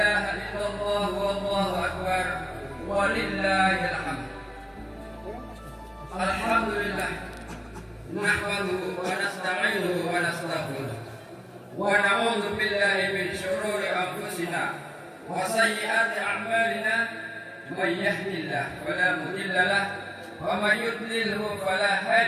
illallah wallahu akbar, walillahil hamd. Alhamdulillah, nahmaduhu wa nasta'inuhu wa nastaghfiruh wa na'udzu billahi min syururi anfusina wa sayyiati a'malina man yahdihillahu fala mudilla lahu wa man yudlilhu fala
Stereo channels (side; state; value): both; identical; correlation 1.00